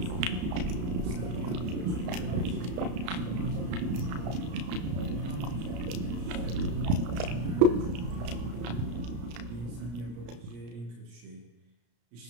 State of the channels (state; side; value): late; left; 34 ms